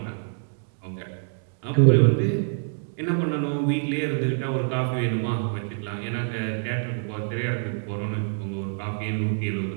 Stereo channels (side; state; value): left; silent; digital silence